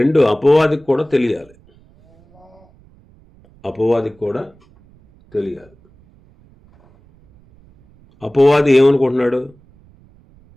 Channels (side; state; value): right; noise; rumble, 29 dB below the sound